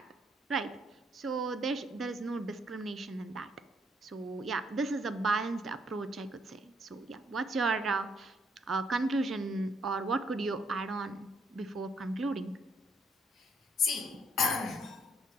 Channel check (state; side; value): normal; both; correlation 0.70